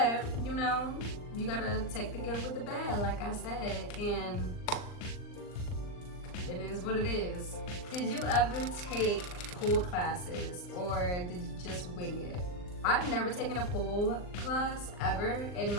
you know, you gotta take the good with the bad, like I said, and it is what it is. Did you ever take pole classes, or did you just wing it? I've never taken a pole class ever in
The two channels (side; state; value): right; late; 39 ms